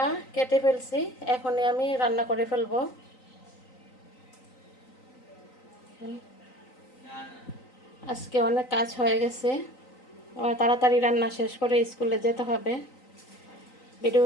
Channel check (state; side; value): late; right; 3.9 ms